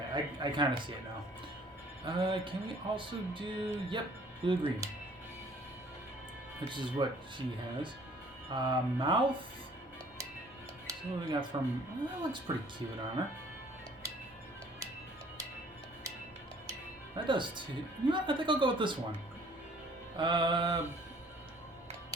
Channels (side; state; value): both; normal; correlation 0.56